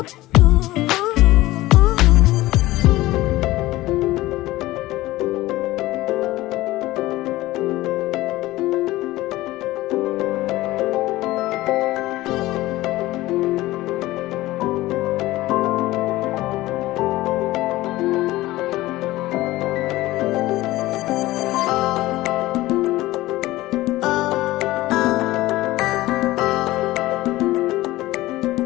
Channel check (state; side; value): quieter; right; 17.6 dB